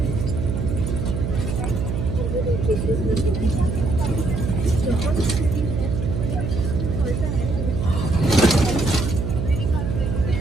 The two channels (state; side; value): noise; right; hum, 2 dB below the sound